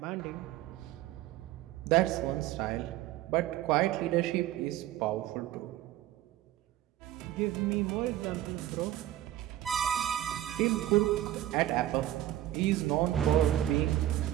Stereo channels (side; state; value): left; quieter; 13.5 dB